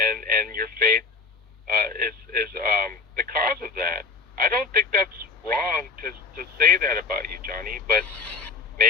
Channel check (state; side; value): quieter; right; 4.8 dB